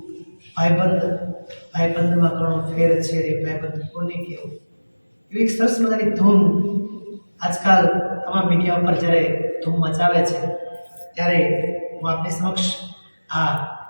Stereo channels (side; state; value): both; inverted; correlation -1.00